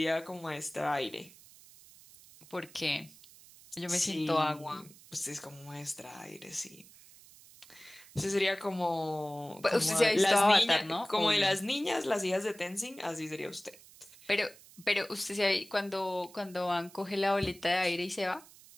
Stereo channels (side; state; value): right; noise; hiss, 22 dB below the sound